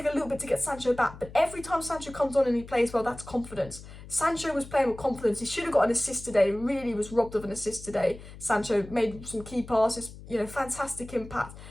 a little bit to get Sancho back. But every time Sancho comes on and he plays well, that's confidence. Sancho was playing with confidence. He should have got an assist today. Really was robbed of an assist today. Sancho made some key passes. Fantastic impact.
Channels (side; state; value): left; noise; hum, 16 dB below the sound